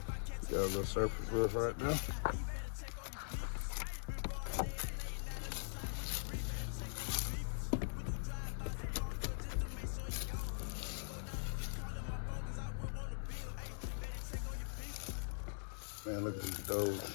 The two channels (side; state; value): right; silent; digital silence